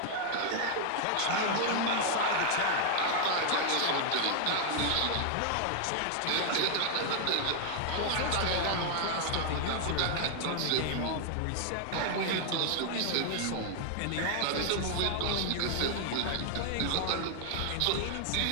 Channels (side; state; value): both; different; correlation 0.00